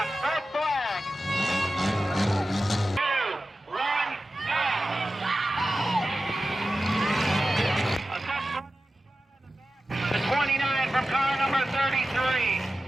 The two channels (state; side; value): normal; both; correlation 0.94